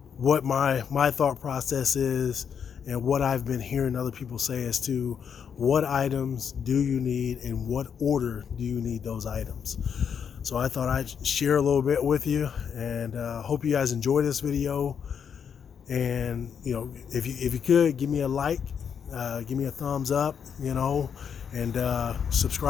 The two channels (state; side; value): quieter; right; 7.4 dB